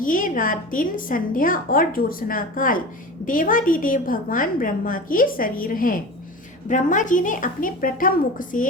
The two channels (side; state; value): both; normal; correlation 0.32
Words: रात, दिन, संध्या और ज्योत्सना काल देवादिदेव भगवान ब्रह्मा के शरीर हैं। ब्रह्मा जी ने अपने प्रथम मुख